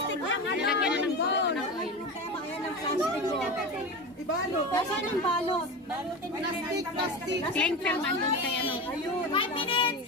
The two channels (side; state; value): both; normal; correlation 0.25